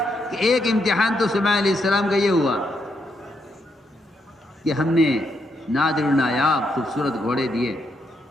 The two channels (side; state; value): both; normal; correlation 0.79